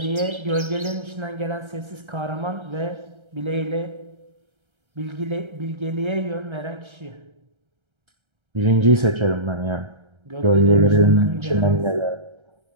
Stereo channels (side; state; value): left; late; 1.3 ms